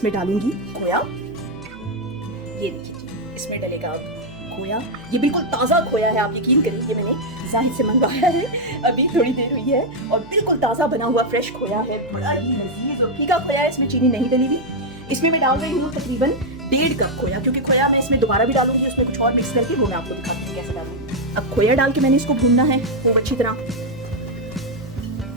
डालूंगी खोया। ये देखिए जी, इसमें डलेगा अब खोया। ये बिल्कुल ताज़ा खोया है, आप यकीन करिए, ये मैंने जाहिर से मंगवाया है, अभी थोड़ी देर हुई है, और बिल्कुल ताज़ा बना हुआ फ्रेश खोया है, बड़ा ही लजीज और फीका खोया है। इसमें चीनी नहीं डली हुई। इसमें मैं डाल रही हूँ तकरीबन 1.5 कप खोया, क्योंकि खोया मैं इसमें दोबारा भी डालूंगी, उसमें कुछ और मिक्स करके, वो मैं आपको दिखाती हूँ कैसे डालूंगी। अब खोया डाल के मैंने इसको भूनना है खूब अच्छी तरह।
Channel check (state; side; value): noise; right; hum, 21 dB below the sound